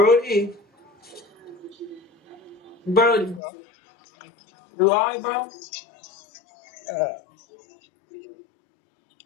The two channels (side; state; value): right; drops out; at 3.4 s